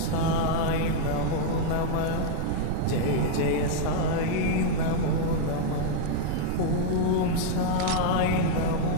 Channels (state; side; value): different; both; correlation 0.00